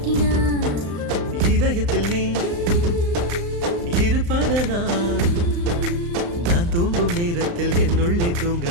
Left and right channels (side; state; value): left; late; 35 ms